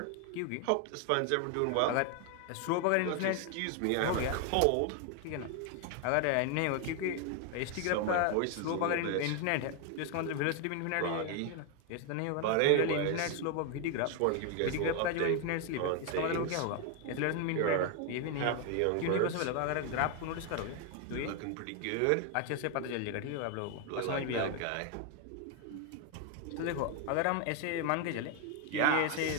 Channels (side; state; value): both; different; correlation 0.01